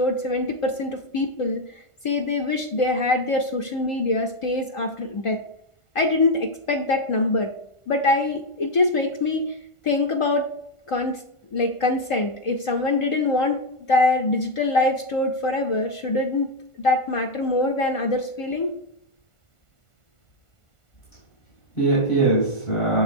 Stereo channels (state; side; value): late; right; 1.5 ms